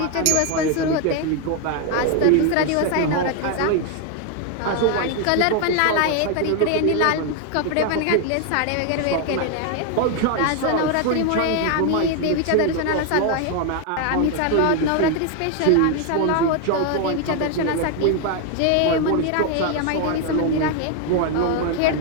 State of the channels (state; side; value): different; both; correlation 0.01